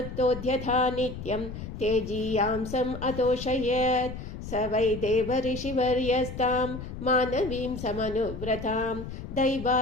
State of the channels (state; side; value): noise; left; rumble, 9 dB below the sound